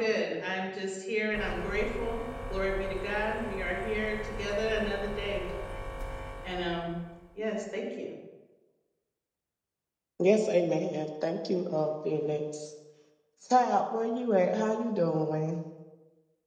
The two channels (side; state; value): both; identical; correlation 1.00